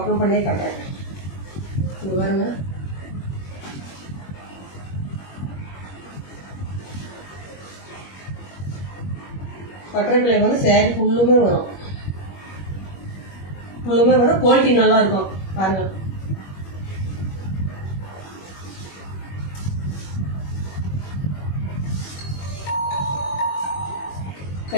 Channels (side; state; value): right; late; 21 ms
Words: பண்ணியே காட்டுறேன். இங்க பாருங்க. பட்டர்ஃப்ளை வந்து சேரீ ஃபுல்லுமே வரும். குவாலிட்டி நல்லா இருக்கும். பாருங்க,